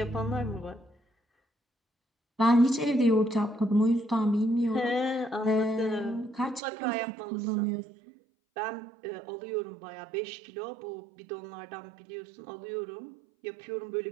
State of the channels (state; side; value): drops out; left; at 6.6 s